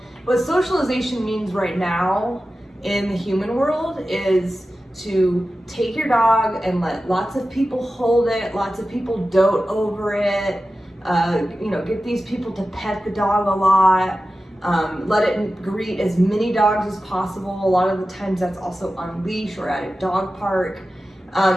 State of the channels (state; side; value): normal; both; correlation 0.94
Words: what socialization means right now in the human world is to take your dog and let lots of people hold it, lots of people dote over it, get these people to pet the dog a lot, let it greet as many dogs as possible. A lot of the times that's also on leash or at a dog park,